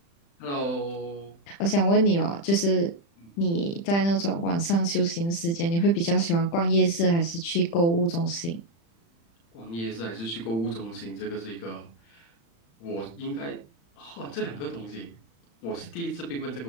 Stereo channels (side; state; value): right; late; 35 ms